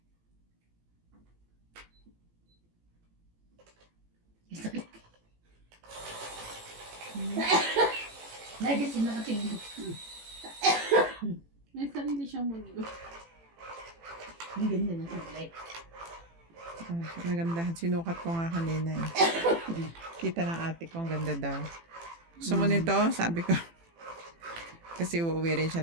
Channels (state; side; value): late; left; 18 ms